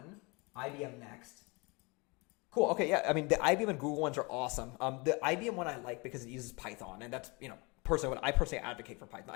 IBM next. Cool. Okay, yeah. I mean, the IBM and Google ones are awesome. The IBM one I like because it uses Python, and that's, personally, I personally advocate for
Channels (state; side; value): quieter; right; 28.2 dB